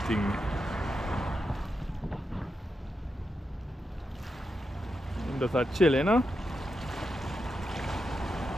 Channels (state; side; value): normal; both; correlation 0.86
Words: things. Him just a chill, you know.